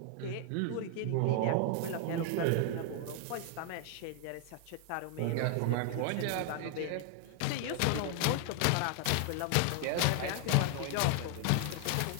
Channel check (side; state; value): both; different; correlation 0.00